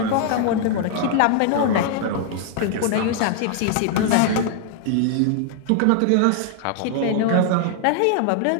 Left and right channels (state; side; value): different; both; correlation 0.00